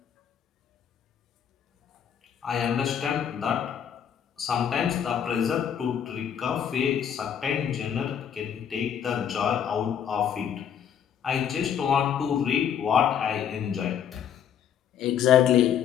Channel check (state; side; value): quieter; right; 8.7 dB